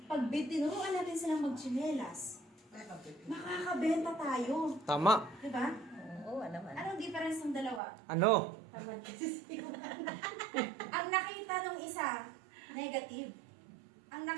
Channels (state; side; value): drops out; left; at 7.8 s